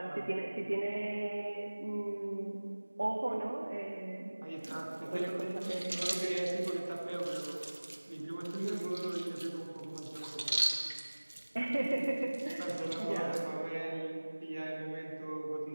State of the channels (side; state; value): both; inverted; correlation -1.00